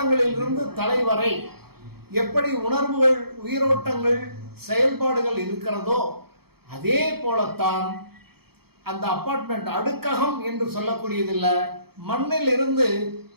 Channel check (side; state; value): left; late; 0.96 ms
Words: தலை வரை எப்படி உணர்வுகள், உயிரோட்டங்கள், செயல்பாடுகள் இருக்கிறதோ அதே போலத்தான் அந்த அபார்ட்மெண்ட் அடுக்ககம் என்று சொல்லக்கூடியதில்லை. மண்ணில் இருந்து